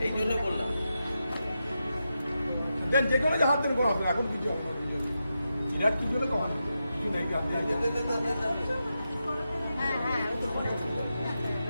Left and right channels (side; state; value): both; inverted; correlation -0.88